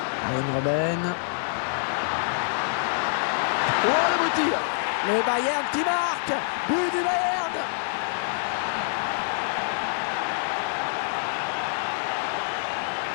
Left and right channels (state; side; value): silent; right; digital silence